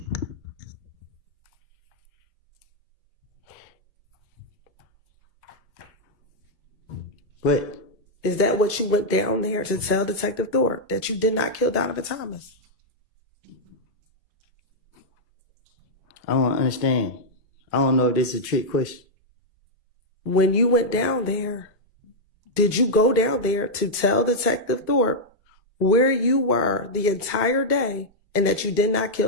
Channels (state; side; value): normal; both; correlation -0.04